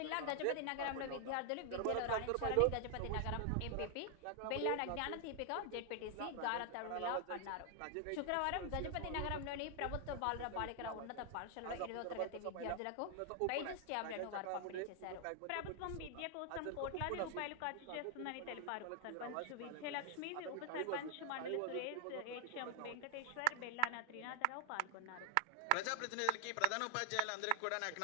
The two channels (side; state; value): both; different; correlation 0.00